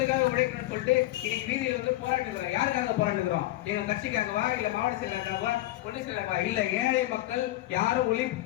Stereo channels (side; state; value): right; quieter; 16.5 dB